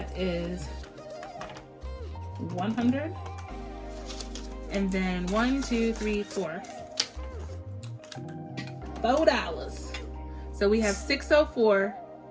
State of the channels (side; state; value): both; identical; correlation 1.00